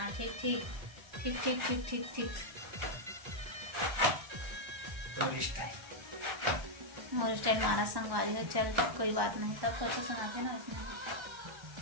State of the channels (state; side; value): late; left; 1.3 ms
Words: ठीक ठीक ठीक ठीक ठीक ठीक ठीक तो रिश्ता है और स्टाइल मारा संगवारी हो। चल कोई बात नहीं, सब कुछ सुनाते ना इसमें।